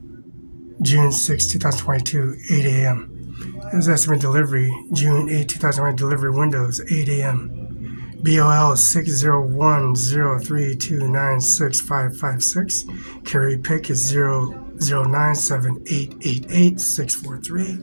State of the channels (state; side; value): inverted; both; correlation -1.00